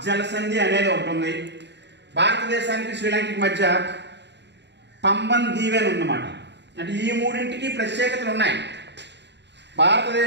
జలసంధి అనేది ఒకటి ఉంది. భారతదేశానికి శ్రీలంకకి మధ్య పంబన్ దీవి అని ఉందన్నమాట. అంటే ఈ మూడింటికి ప్రత్యేకతలు ఉన్నాయి.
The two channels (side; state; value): left; late; 0.50 ms